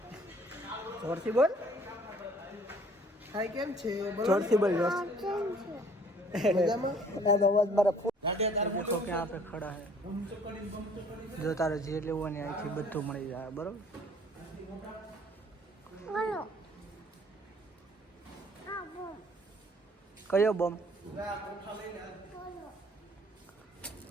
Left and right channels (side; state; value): both; normal; correlation 0.56